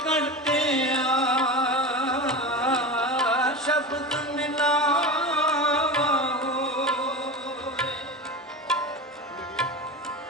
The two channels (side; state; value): both; normal; correlation 0.26